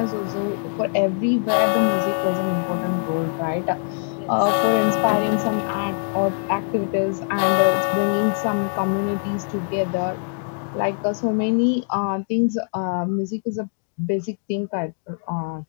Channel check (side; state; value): right; silent; digital silence